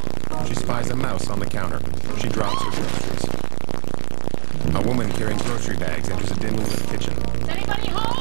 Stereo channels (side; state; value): left; silent; digital silence